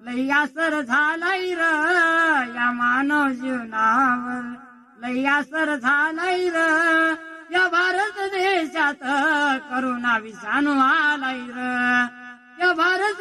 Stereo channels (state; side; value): identical; both; correlation 1.00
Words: लय असर झालाय र, या मानव जीवनावर लय असर झालाय र, या भारत देशात करोना विषाणू आलाय र, या